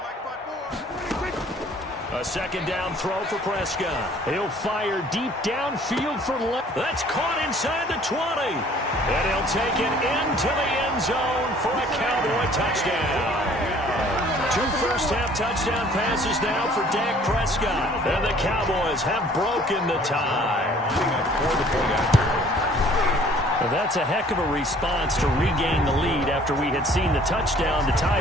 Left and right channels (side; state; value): both; normal; correlation 0.55